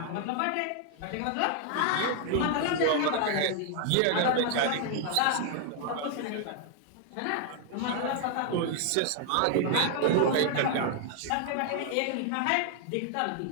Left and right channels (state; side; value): different; both; correlation 0.00